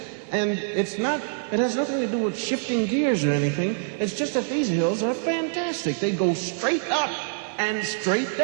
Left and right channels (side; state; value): left; silent; digital silence